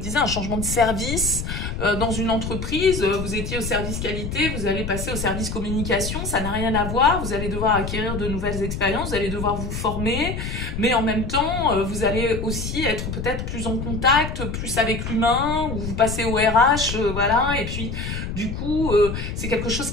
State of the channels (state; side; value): noise; left; rumble, 5 dB below the sound